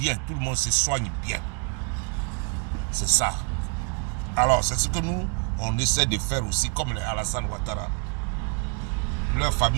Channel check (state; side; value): quieter; left; 36.9 dB